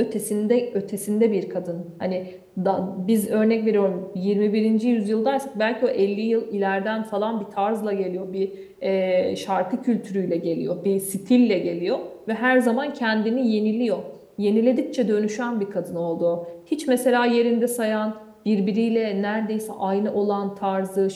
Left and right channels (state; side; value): identical; both; correlation 1.00